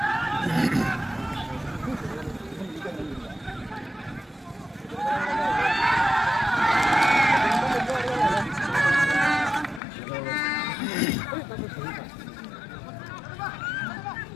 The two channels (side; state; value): right; drops out; at 9.8 s